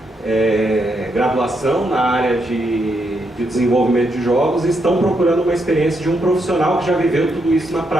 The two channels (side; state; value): both; normal; correlation 0.80